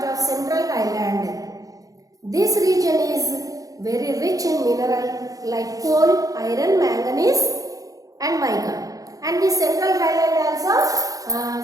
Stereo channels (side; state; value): left; late; 0.17 ms